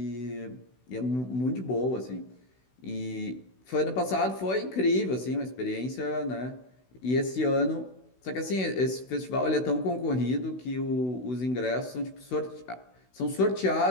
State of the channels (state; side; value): late; right; 16 ms